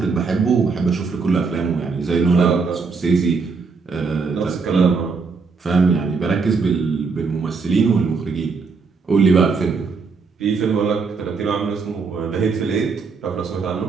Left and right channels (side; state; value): left; quieter; 4.8 dB